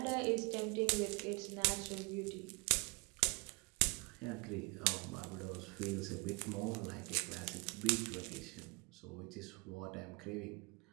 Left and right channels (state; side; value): quieter; left; 29.4 dB